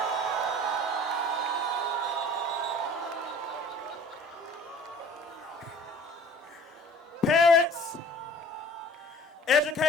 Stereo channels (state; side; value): normal; both; correlation 0.48